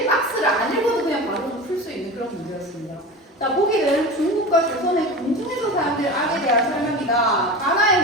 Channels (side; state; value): both; normal; correlation 0.30